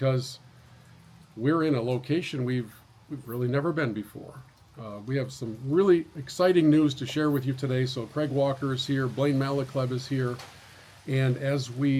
we're in a location we've really never been before. We have some really exciting news to share with you today. So Craig Walker is here, Blaine Malochleb is here, and as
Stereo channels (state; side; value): identical; both; correlation 1.00